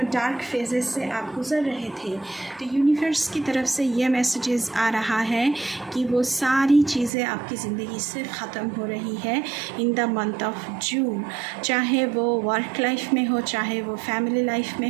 डार्क फेजेस से आप गुज़र रहे थे, तो यूनिवर्स की तरफ से ये मैसेजेस आ रहा है कि वो सारी चीज़ें आपकी ज़िंदगी से ख़त्म हो रही है इन द मंथ ऑफ जून. चाहे वो वर्क लाइफ में हो, चाहे वो फैमिली लाइफ में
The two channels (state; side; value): drops out; left; at 7.1 s